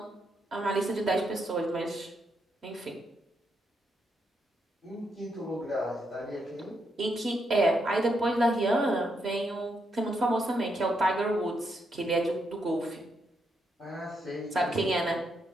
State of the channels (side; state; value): both; normal; correlation 0.80